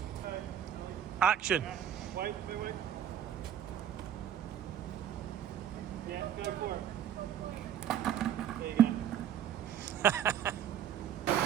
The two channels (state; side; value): quieter; left; 10.0 dB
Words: action. Wait. Yeah, go for it. There you go.